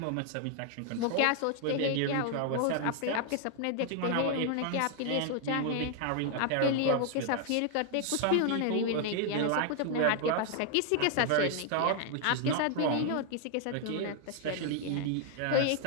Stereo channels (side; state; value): both; different; correlation 0.00